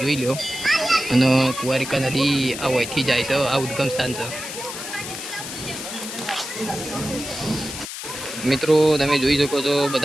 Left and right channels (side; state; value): left; noise; hiss, 8 dB below the sound